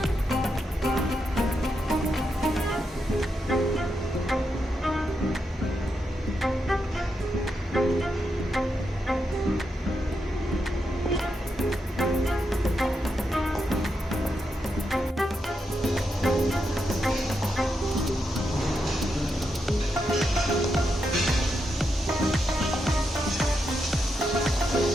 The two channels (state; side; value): normal; both; correlation 0.84